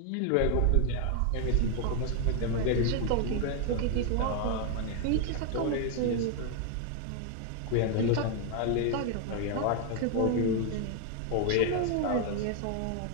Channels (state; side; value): different; both; correlation 0.01